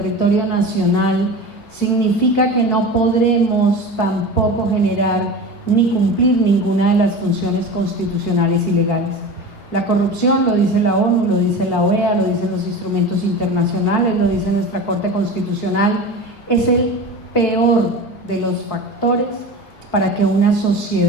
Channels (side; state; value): both; normal; correlation 0.31